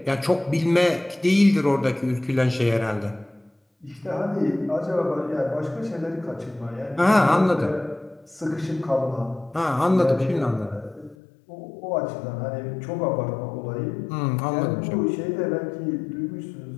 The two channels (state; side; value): drops out; right; at 11.2 s